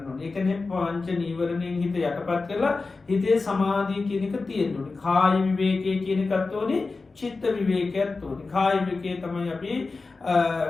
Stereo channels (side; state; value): right; quieter; 3.9 dB